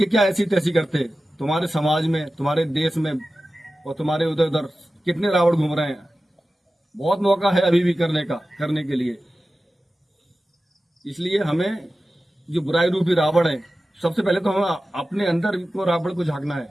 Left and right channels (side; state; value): both; normal; correlation 0.94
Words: क्या ऐसी तैसी करते? तुम्हारे समाज में, तुम्हारे देश में और तुम्हारे उधर उधर कितने रावण घूम रहे हैं। बहुत मौका है अभी भी करने के लिए। इसलिए हमें जो बुराई रूपी रावण है, सबसे पहले तो हमें अपने अंदर को रावण को झांकना है।